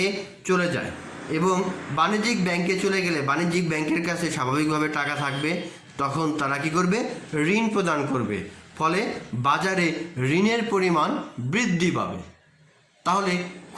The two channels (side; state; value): both; identical; correlation 1.00